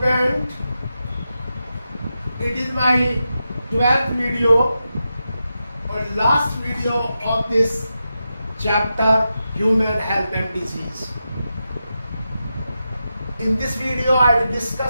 student, it is my 12th video or last video of this chapter, human health and disease. In this video I will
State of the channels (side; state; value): both; inverted; correlation -0.89